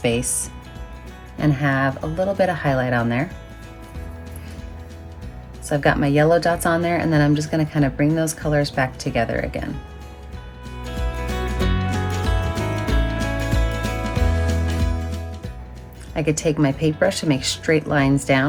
and have a little bit of highlight on there. So I've got my yellow dots on there, and then I'm just gonna kind of bring those colors back together again. I could take my paintbrush and make straight lines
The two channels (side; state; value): both; identical; correlation 1.00